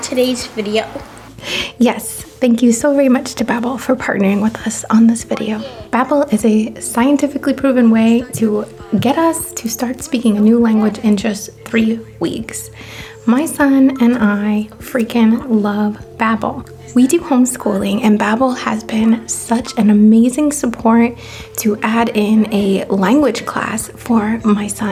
today's video. Yes, thank you so very much to Babbel for partnering with us on this video. Babbel is a scientifically proven way to get us to start speaking a new language in just 3 weeks. My son and I freaking love Babbel. We do homeschooling, and Babbel has been such an amazing support to add in a language class for my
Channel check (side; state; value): both; identical; correlation 1.00